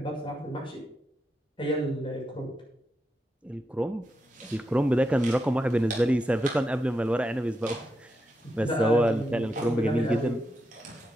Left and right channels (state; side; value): normal; both; correlation 0.85